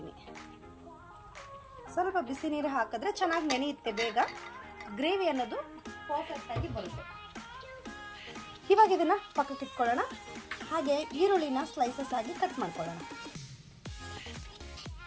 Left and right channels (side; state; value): both; identical; correlation 1.00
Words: ಸ್ವಲ್ಪ ಬಿಸಿ ನೀರು ಹಾಕಿದ್ರೆ ಚೆನ್ನಾಗಿ ನೆನೆಯುತ್ತೆ, ಬೇಗ ಗ್ರೇವಿ ಅನ್ನೋದು ಪರ್ಫೆಕ್ಟಾಗಿ ಬರುತ್ತೆ. ಇವಾಗ ಇದನ್ನು ಪಕ್ಕಕ್ಕೆ ಇಟ್ಕೊಳ್ಳೋಣ. ಹಾಗೆ ಈರುಳ್ಳಿನ ಸ್ಲೈಸಸ್ ಆಗಿ ಕಟ್ ಮಾಡ್ಕೊಳ್ಳೋಣ.